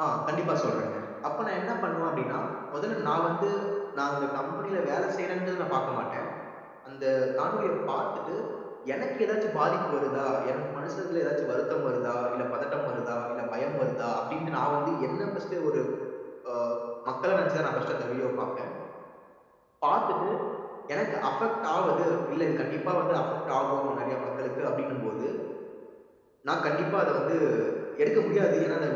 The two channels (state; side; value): identical; both; correlation 1.00